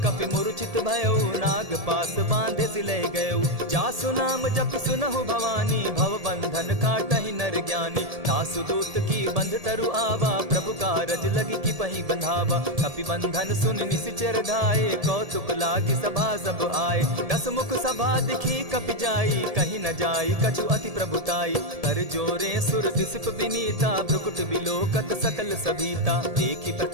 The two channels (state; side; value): late; left; 1.7 ms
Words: कपि मूर्छित भयउ, नाग पास बांधे सिले गयउ। जासु नाम जपि सुनहु भवानी, भव बंधन काटहि नर ज्ञानी। तासु दूत की बंध तरु आवा, प्रभु कारज लगी की पही बंधावा। कपि बंधन सुन निसिचर धाये, कौतुक लागी सभा सब आए। दस मुख सभा दिखी कपि जाई, कहीं न जाई कछु अति प्रभुताई। कर जोरे सुर दिसप विनीता, भ्रुकुट बिलोकत सकल सभीता। देखी